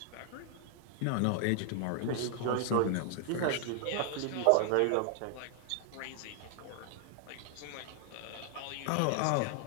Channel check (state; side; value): different; both; correlation 0.00